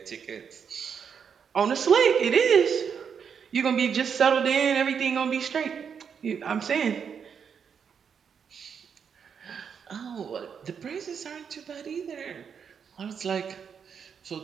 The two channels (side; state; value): left; quieter; 7.0 dB